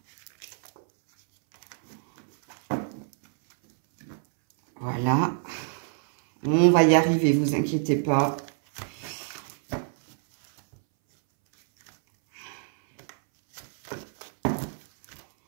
Voilà, on va y arriver, vous inquiétez pas.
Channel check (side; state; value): left; silent; 61 dB below the other